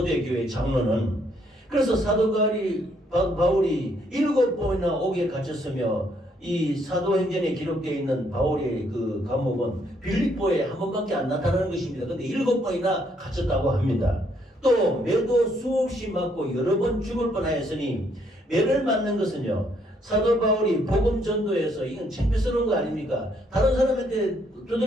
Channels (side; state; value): both; normal; correlation 0.70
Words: 장로는. 그래서 사도 바울이 7번이나 옥에 갇혔으며 이 사도행전에 기록되어 있는 바울의 그 감옥은 빌립보에 한 번밖에 안 나타나는 것입니다. 그런데 7번이나 갇혔다고 합니다. 또 매도 수없이 맞고 여러 번 죽을 뻔하였으니 매를 맞는 것은요, 사도 바울이 복음 전도에서 이건 창피스러운 거 아닙니까? 다른 사람한테